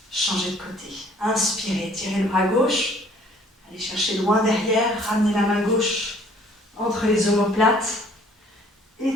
Changez de côté. Inspirez, tirez le bras gauche. Allez chercher loin derrière. Ramenez la main gauche entre les omoplates.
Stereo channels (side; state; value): both; normal; correlation 0.57